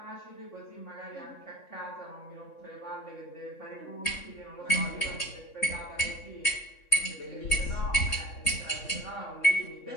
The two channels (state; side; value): late; right; 3.6 ms